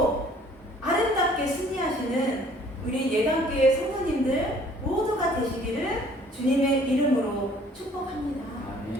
아름답게 승리하시는 우리 예당교회 성도님들 모두가 되시기를 주님의 이름으로 축복합니다.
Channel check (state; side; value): normal; both; correlation 0.57